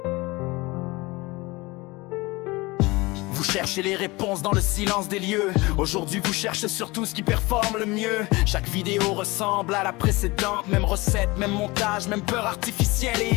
Vous cherchez les réponses dans le silence des lieux. Aujourd'hui vous cherchez surtout ce qui performe le mieux. Chaque vidéo ressemble à la précédente. Même recette, même montage, même peur artificielle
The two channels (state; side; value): quieter; right; 22.9 dB